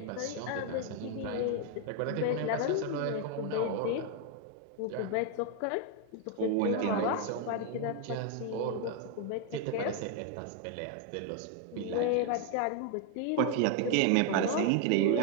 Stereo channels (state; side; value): different; both; correlation 0.00